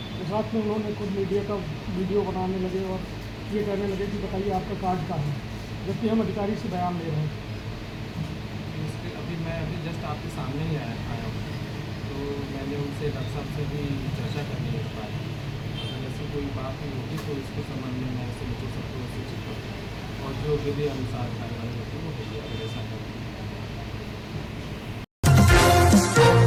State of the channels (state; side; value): identical; both; correlation 1.00